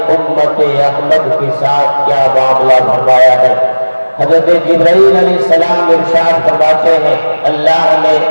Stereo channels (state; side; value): inverted; both; correlation -1.00